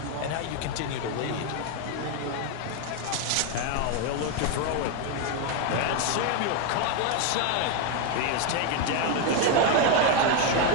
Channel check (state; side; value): different; both; correlation 0.01